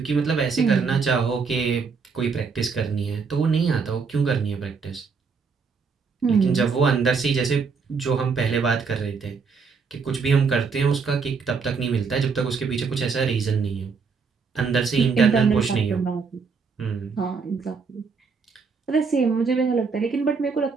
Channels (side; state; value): left; quieter; 5.2 dB